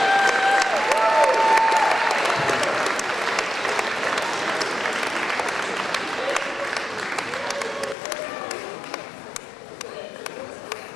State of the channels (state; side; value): drops out; right; at 8.0 s